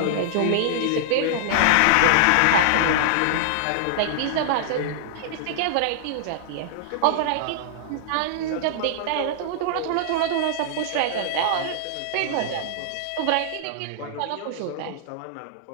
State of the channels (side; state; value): both; different; correlation -0.01